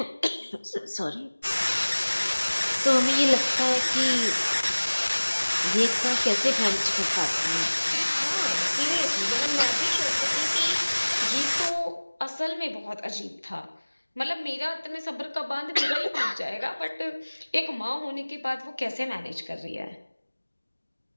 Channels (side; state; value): both; inverted; correlation -1.00